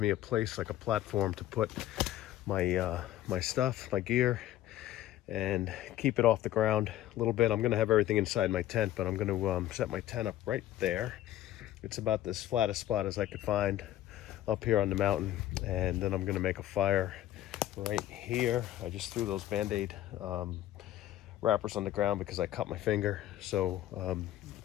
me a place, like a platform, to put my my stuff, my gear, and keep it off the ground a little bit. I'm gonna have everything inside my tent, but I'm gonna set my tent up right there. It's about this flattest spot as I could find up here on the mountain, and then I'm gonna make a fire right here. I just threw those Band-Aid wrappers on the ground because I cut my finger, so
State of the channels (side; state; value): right; quieter; 13.4 dB